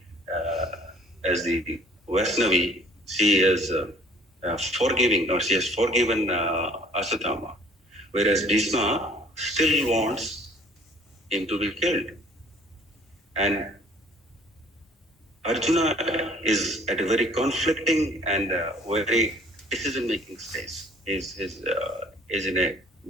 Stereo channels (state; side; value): normal; both; correlation 0.55